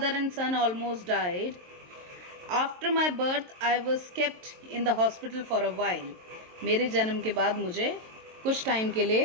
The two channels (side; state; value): left; late; 23 ms